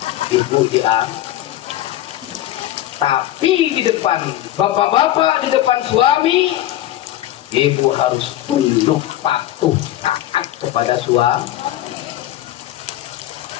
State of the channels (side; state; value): right; quieter; 13.9 dB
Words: ibu diangkat. Tapi di depan bapak-bapak, di depan suami, ibu harus tunduk patuh taat kepada suami.